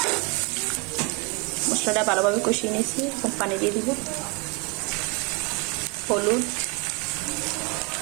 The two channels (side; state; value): left; quieter; 30.6 dB